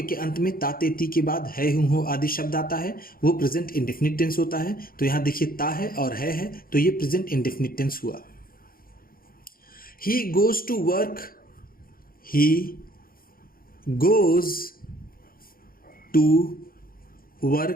के अंत में ता ते ती के बाद है, हूं, हो आदि शब्द आता है वो प्रेजेंट इंडेफिनिट टेंस होता है। तो यहाँ देखिए ता है और है तो ये प्रेजेंट इंडेफिनिट टेंस हुआ। He goes to work. He goes to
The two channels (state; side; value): late; right; 0.42 ms